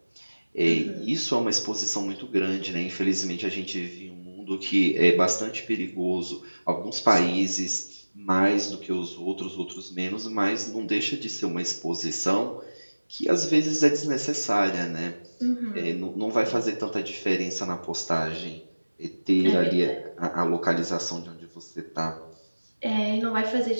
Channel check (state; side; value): inverted; both; correlation -1.00